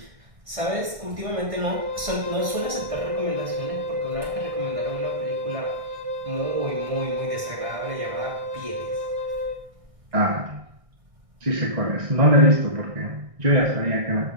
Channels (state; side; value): late; left; 1.6 ms